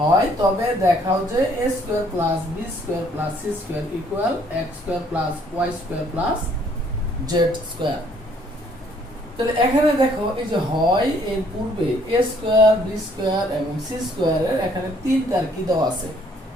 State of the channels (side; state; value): both; normal; correlation 0.63